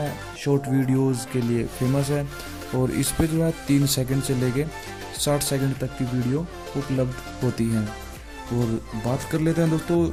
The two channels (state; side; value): identical; both; correlation 1.00